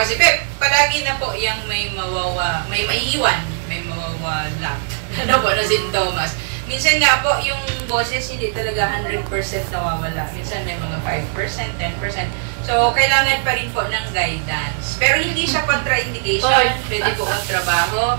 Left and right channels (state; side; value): silent; left; 66 dB below the other